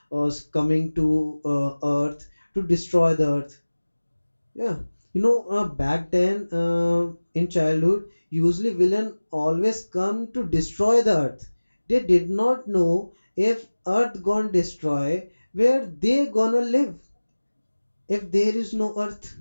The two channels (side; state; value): both; inverted; correlation -1.00